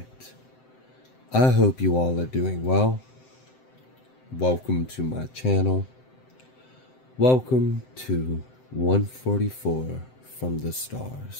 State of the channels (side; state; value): right; late; 7.8 ms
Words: I hope you all are doing well. Welcome to my channel. Welcome to 144 from the